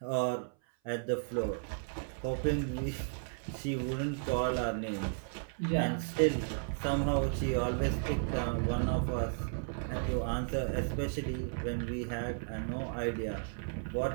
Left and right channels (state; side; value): silent; left; 55 dB below the other